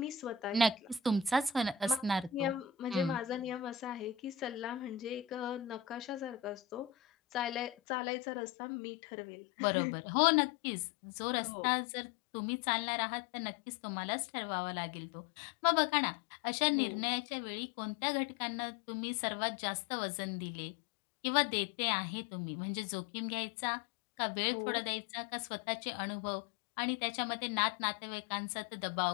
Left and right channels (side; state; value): right; drops out; at 7.8 s